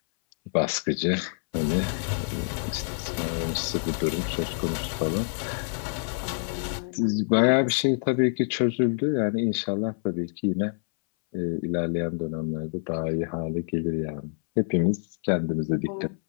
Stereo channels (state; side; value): silent; right; 60 dB below the other